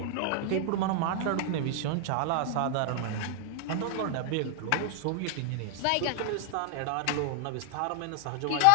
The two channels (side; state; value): both; different; correlation 0.00